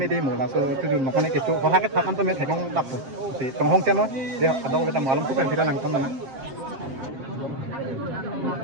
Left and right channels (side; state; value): left; late; 7.6 ms